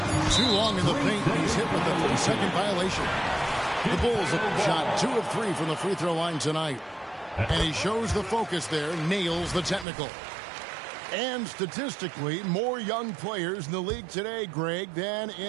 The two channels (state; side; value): drops out; left; at 9.9 s